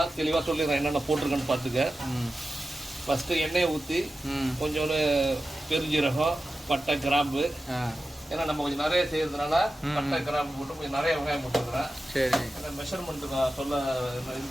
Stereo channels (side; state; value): both; normal; correlation 0.93